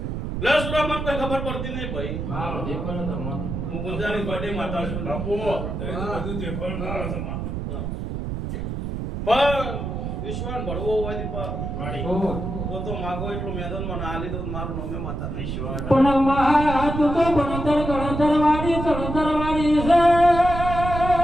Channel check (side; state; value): right; noise; rumble, 4 dB below the sound